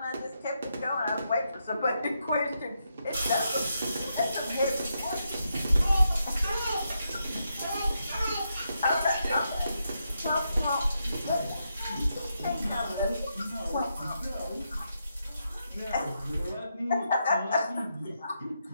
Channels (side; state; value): both; inverted; correlation -0.82